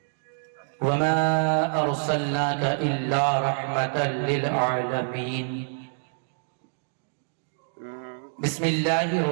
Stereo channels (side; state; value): left; silent; digital silence